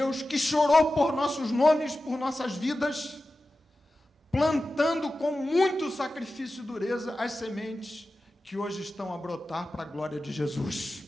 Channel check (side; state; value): both; normal; correlation 0.94